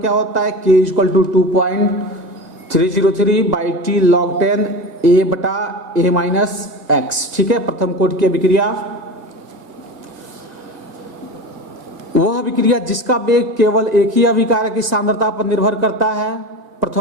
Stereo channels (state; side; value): late; left; 1.9 ms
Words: होता है, K equal to 2.303 by T log 10 A बटा A माइनस एक्स, ठीक है। प्रथम कोटि की अभिक्रिया वह अभिक्रिया जिसका वेग केवल एक ही अभिकारक की सांद्रता पर निर्भर करता है